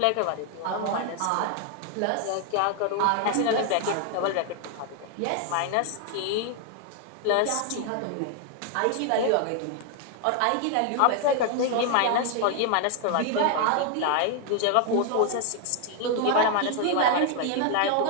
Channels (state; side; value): different; both; correlation 0.00